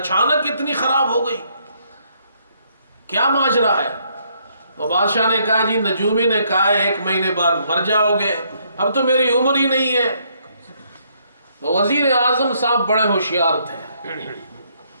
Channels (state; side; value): inverted; both; correlation -0.70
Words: اتنی خراب ہو گئی، کیا ماجرا ہے؟ تو بادشاہ نے کہا جی نجومی نے کہا ہے 1 مہینے بعد مر جاؤ گے۔ اب تو میری عمر ہی نہیں ہے. تو وزیر اعظم صاحب بڑے ہوشیار تھے.